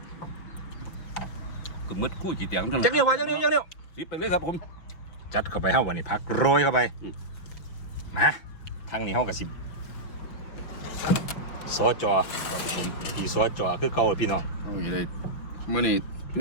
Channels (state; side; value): late; right; 5.9 ms